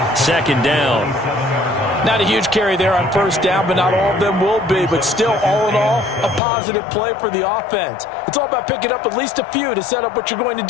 2nd down. Not a huge carry there on first down, but not all of them will be. But still, all in all, a positive play for the offense. It's all about picking up at least a few to set up what you're going to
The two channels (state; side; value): drops out; right; at 6.4 s